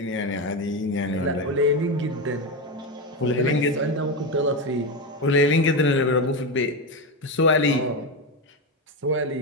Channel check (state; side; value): normal; both; correlation 0.13